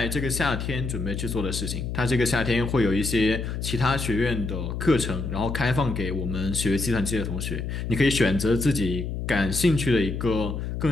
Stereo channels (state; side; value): noise; left; hum, 4 dB below the sound